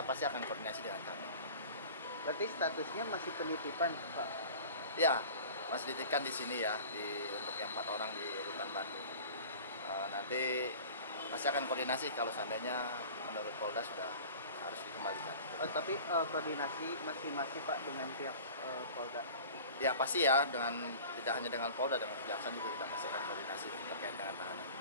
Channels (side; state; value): both; inverted; correlation -0.41